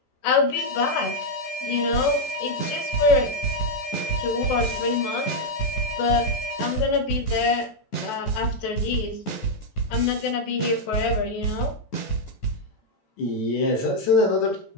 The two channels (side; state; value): right; late; 14 ms